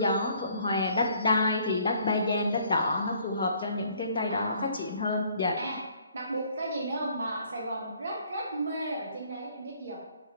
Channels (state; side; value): inverted; both; correlation -0.61